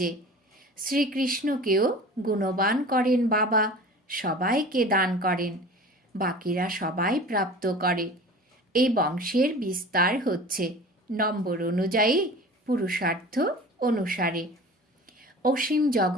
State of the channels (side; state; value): both; normal; correlation 0.39